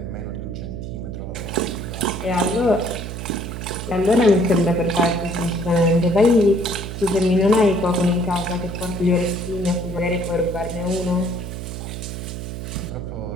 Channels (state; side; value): noise; right; hum, 7 dB below the sound